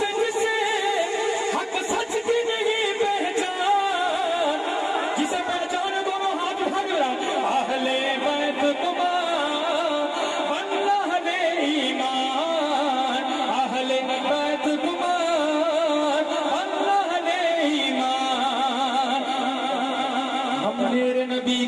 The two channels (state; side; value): identical; both; correlation 1.00